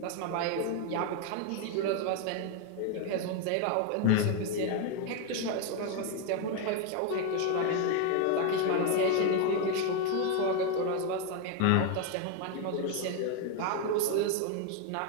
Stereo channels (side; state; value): both; different; correlation 0.01